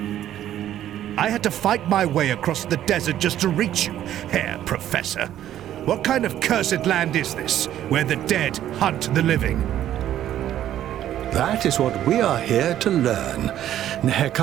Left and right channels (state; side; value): quieter; left; 11.9 dB